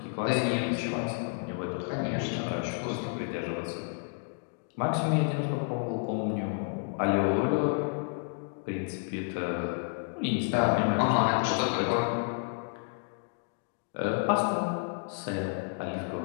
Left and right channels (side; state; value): right; silent; 56 dB below the other